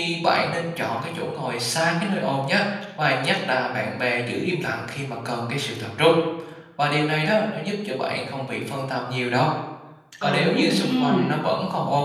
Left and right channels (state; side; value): identical; both; correlation 1.00